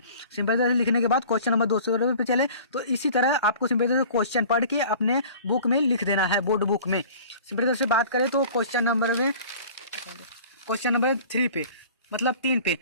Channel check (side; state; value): both; inverted; correlation -0.44